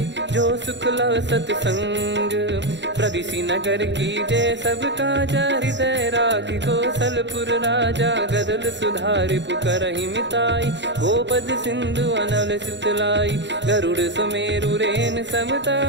जो सुख लव सतसंग। प्रविशि नगर की जय सब काजा, हृदय राखि कौशलपुर राजा। गदल सुधारि पुकरहि मिताई, गोपद सिंधु अनल सितलाई। गरुड़ सुमेरु रेन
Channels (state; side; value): late; left; 0.52 ms